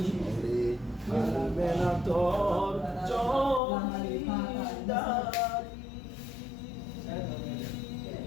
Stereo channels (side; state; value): right; drops out; at 3.6 s